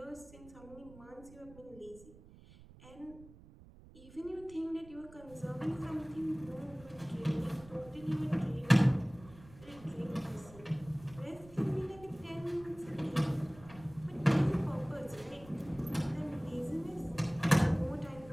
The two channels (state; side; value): noise; right; rumble, 21 dB below the sound